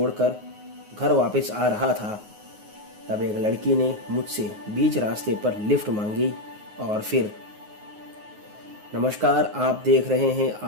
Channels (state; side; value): late; left; 9.5 ms